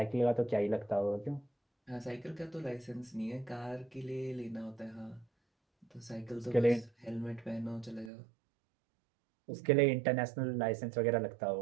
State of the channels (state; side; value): drops out; left; at 8.1 s